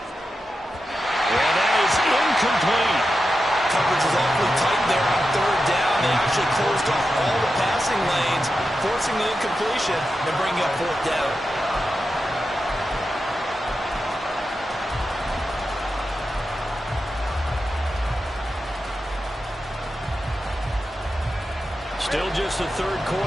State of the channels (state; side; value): normal; both; correlation 0.90